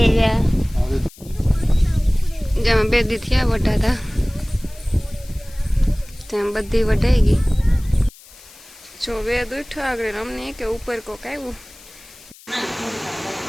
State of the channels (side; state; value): left; noise; hiss, 22 dB below the sound